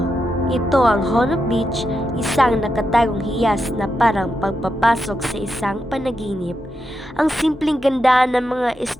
Ito ang Honok Beach, isang nakatagong hiyas na parang pagpapasok sa isang panaginip. Ang simpleng ganda ng mga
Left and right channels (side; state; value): both; normal; correlation 0.85